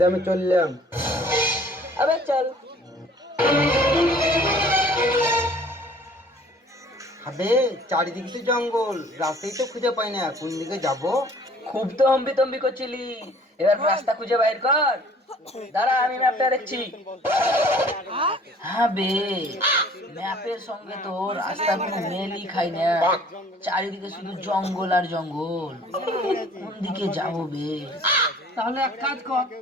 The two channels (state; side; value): normal; both; correlation 0.53